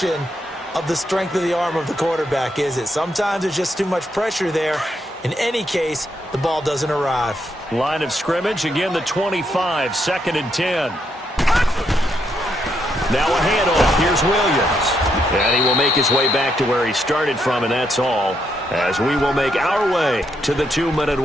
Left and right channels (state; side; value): normal; both; correlation 0.78